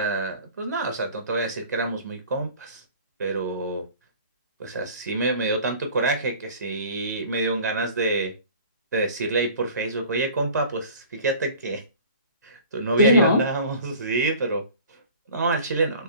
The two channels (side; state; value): both; inverted; correlation -0.45